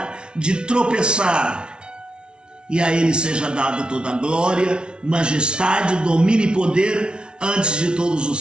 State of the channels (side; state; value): left; late; 0.056 ms